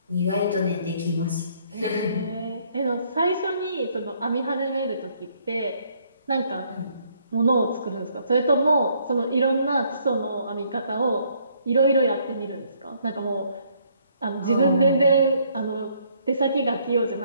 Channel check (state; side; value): inverted; both; correlation -0.67